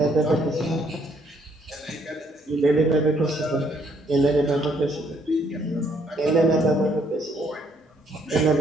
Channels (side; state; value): both; normal; correlation 0.68